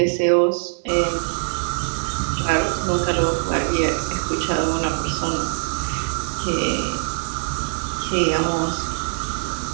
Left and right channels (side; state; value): left; silent; digital silence